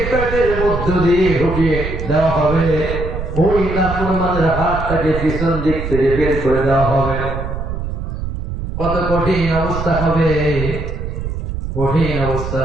পেটের মধ্য দিয়ে ঢুকিয়ে দেওয়া হবে, ওই নাফরমানের হাতটাকে পিছন দিক থেকে বের করে দেওয়া হবে। কত কঠিন অবস্থা হবে, কঠিন অবস্থা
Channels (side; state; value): right; noise; rumble, 5 dB below the sound